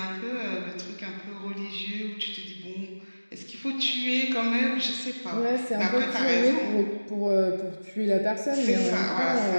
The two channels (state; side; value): inverted; both; correlation -1.00